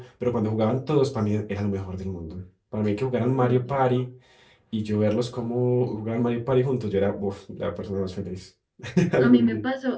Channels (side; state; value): both; identical; correlation 1.00